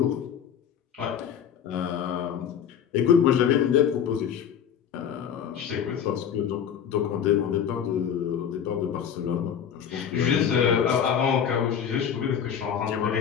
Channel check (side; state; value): right; quieter; 8.3 dB